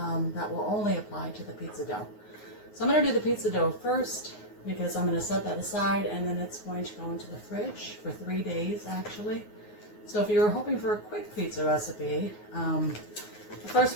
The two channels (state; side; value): late; right; 9.5 ms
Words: that will only apply to the pizza dough. So I'm going to do the pizza dough first because I'm going to set that aside and then it's going to go into the fridge for 3 days actually. So if you're hoping for a quick pizza recipe, the first